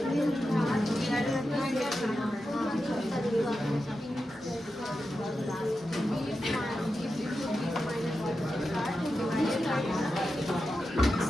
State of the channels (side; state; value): both; normal; correlation 0.90